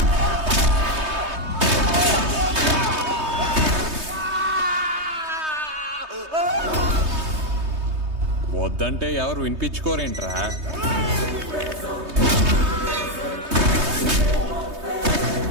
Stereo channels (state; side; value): late; left; 3.2 ms